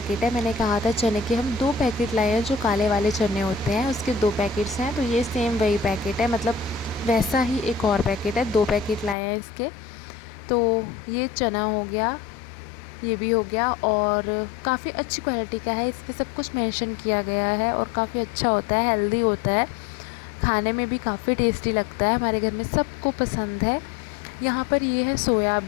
है, मैंने कहा था चने के हम 2 पैकेट लाए हैं, जो काले वाले चने होते हैं उसके 2 पैकेट्स हैं। तो ये सेम वही पैकेट है, मतलब वैसा ही एक और पैकेट है, 2 पैकेट लाए हैं इसके। तो ये चना हो गया, ये भी हो गया, और काफ़ी अच्छी क्वालिटी का है, इस पर सब कुछ मेंशन किया गया है और काफ़ी अच्छा होता है, हेल्दी होता है, खाने में भी काफ़ी टेस्टी लगता है, हमारे घर में सबको पसंद है। यहाँ पर ये है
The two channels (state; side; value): drops out; right; at 9.2 s